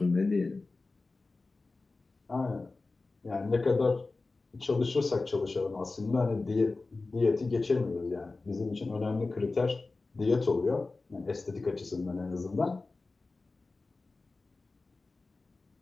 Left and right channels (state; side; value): quieter; right; 3.6 dB